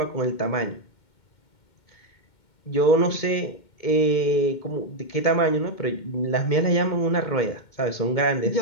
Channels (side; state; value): right; late; 2.2 ms